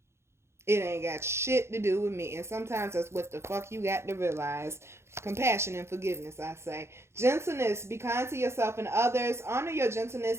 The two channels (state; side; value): late; left; 0.13 ms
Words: It ain't got shit to do with me. And sometimes that's what the fuck you got to realize. Compassion and forgiveness, I say. Gentleness. Be kind to yourself and others. Honor your